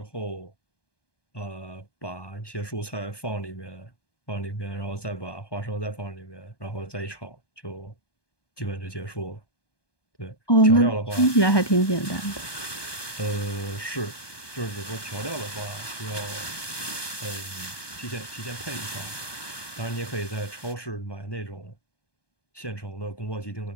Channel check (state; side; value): late; right; 1.2 ms